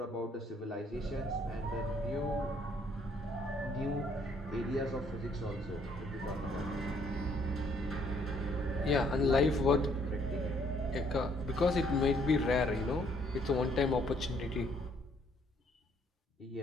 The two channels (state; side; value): normal; both; correlation 0.66